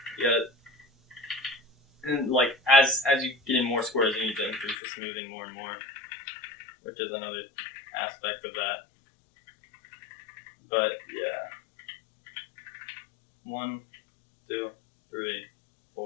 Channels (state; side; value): drops out; right; at 4.8 s